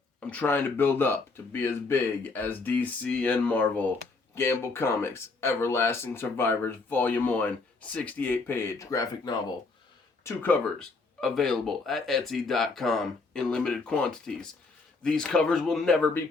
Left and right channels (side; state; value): right; quieter; 3.9 dB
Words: I'm trying to build up to be as big as DC and Marvel. Gamble Comics, Everlasting Survivors, Volume 1, 68-page graphic novel. 2 covers, available at Etsy.com in limited quantities. These covers will never be